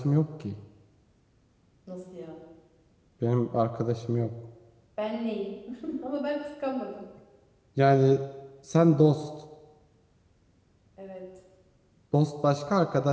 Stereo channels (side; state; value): both; identical; correlation 1.00